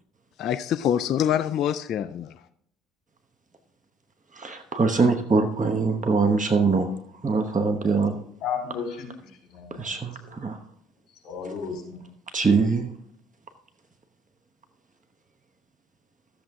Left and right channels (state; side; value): normal; both; correlation 0.65